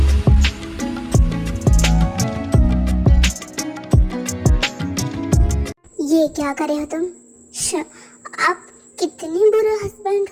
ये क्या करे हो तुम? आप कितने बुरे हस्बैंड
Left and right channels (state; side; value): identical; both; correlation 1.00